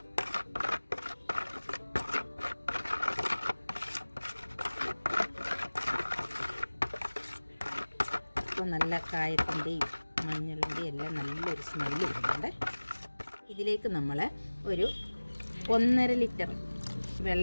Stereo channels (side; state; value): both; inverted; correlation -1.00